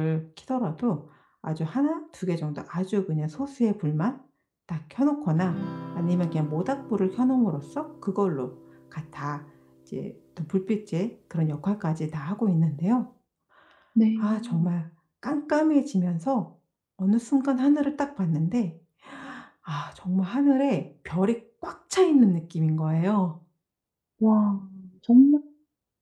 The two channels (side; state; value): both; identical; correlation 1.00